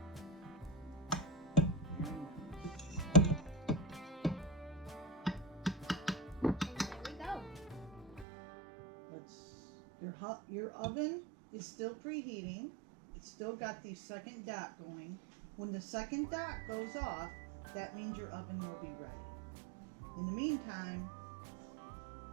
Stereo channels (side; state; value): left; drops out; at 8.2 s